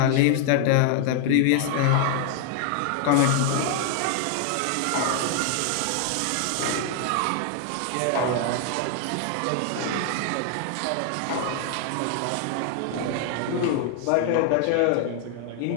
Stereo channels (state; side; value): different; both; correlation 0.00